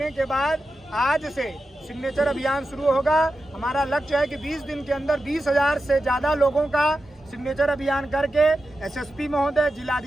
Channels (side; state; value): both; normal; correlation 0.91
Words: के बाद आज से सिग्नेचर अभियान शुरू होगा। हमारा लक्ष्य है कि 20 दिन के अंदर 20,000 से ज़्यादा लोगों का सिग्नेचर अभियान करके एसएसपी महोदय,